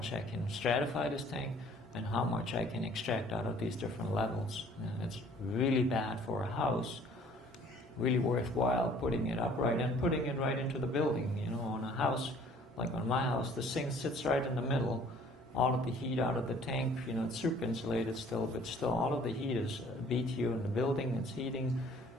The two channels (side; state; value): both; normal; correlation 0.55